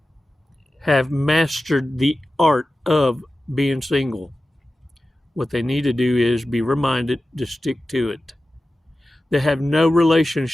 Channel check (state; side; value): normal; both; correlation 0.94